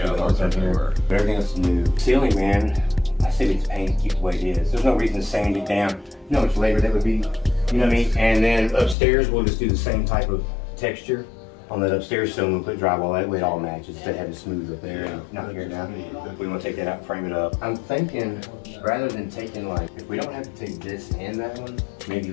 that aren't on here. But everything else is new. Ceiling, man, I say it's paint, keep it the way it is. There's no reason to sand it down. You know how much labor that would be, you know what I mean? And then upstairs, we'll just do the same type of texture on that upstairs ceiling. We'll put drywall that way it all matches instead of having smooth up there and not here now. We want to take that out and frame it up. I'm thinking rather than taking, like, if we don't have to take this and that one, maybe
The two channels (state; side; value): drops out; right; at 9.0 s